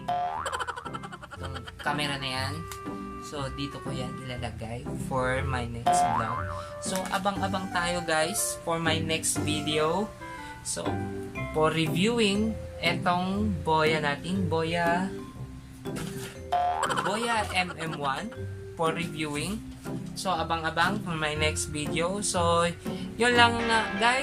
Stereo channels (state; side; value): identical; both; correlation 1.00